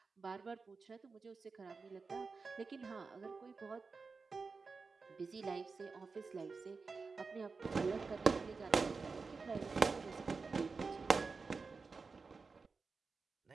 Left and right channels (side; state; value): left; quieter; 4.5 dB